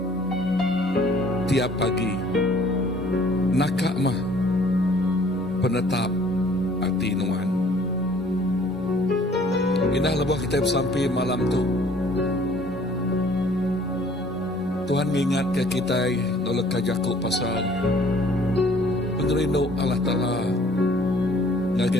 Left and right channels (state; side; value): normal; both; correlation 0.56